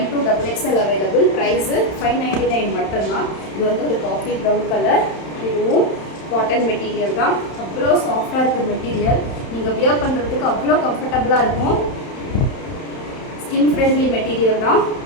அவைலபிள். ப்ரைஸு 599 மட்டும்தான். இது வந்து ஒரு காஃபி ப்ரௌன் கலர். இதுவும் காட்டன் மெட்டீரியல் தான். அவ்வளோ சாஃப்டாக இருக்குது மெட்டீரியல். நீங்கள் வியர் பண்ணுறதுக்கு அவ்வளோ கம்ஃபர்டபுளாக இருக்கும். ஸ்கின் ஃப்ரெண்ட்லி மெட்டீரியல் தான்.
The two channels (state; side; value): late; right; 31 ms